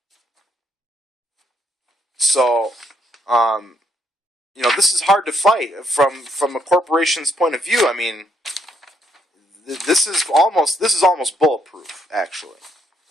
So, this is hard to fight from a corporation's point of view. I mean, this is almost bulletproof, actually.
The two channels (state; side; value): normal; both; correlation 0.73